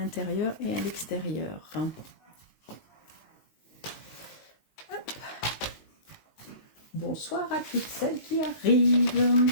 et à l'extérieur. Bonsoir à toutes celles qui arrivent.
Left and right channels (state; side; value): late; right; 19 ms